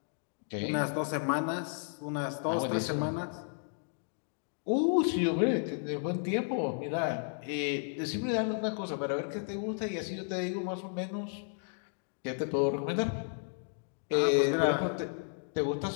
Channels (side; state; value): right; silent; digital silence